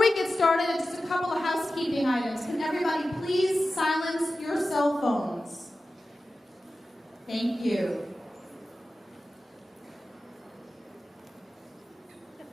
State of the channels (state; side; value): normal; both; correlation 0.94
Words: get started, just a couple of housekeeping items. Can everybody please silence your cell phones? Thank you.